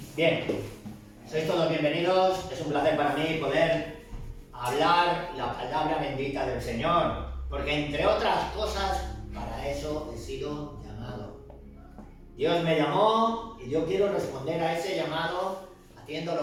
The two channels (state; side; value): identical; both; correlation 1.00